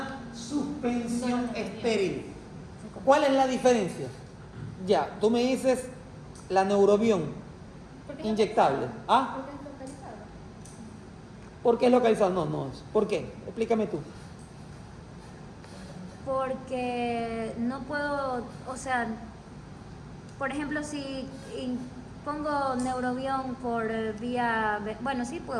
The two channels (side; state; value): both; identical; correlation 1.00